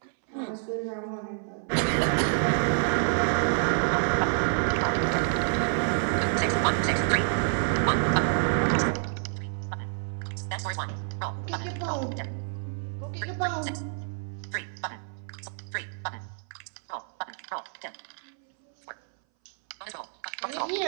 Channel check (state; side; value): silent; left; 59 dB below the other